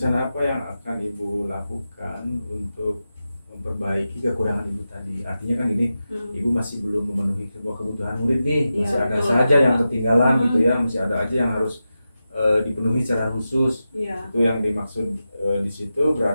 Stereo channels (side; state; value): both; inverted; correlation -0.92